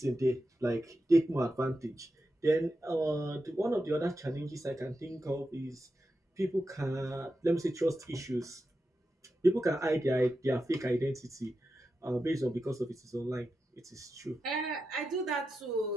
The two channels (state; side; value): normal; both; correlation 0.89